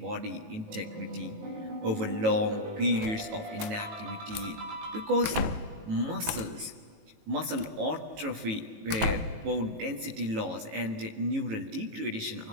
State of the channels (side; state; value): left; late; 18 ms